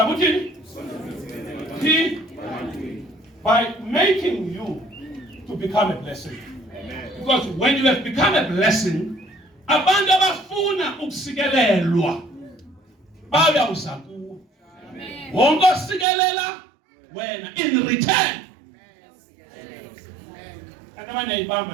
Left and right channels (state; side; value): drops out; left; at 16.1 s